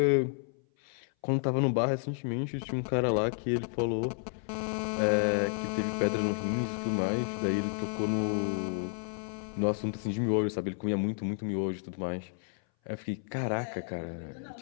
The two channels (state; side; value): silent; right; 57 dB below the other